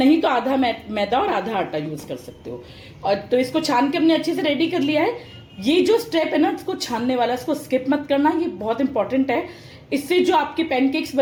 तो आधा मैदा और आधा आटा यूज कर सकते हो। और तो इसको छान के हमने अच्छे से रेडी कर लिया है। ये जो स्टेप है ना, इसको छानने वाला, इसको स्किप मत करना, ये बहुत इंपॉर्टेंट है। इससे जो आपके पैनकेक्स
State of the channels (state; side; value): identical; both; correlation 1.00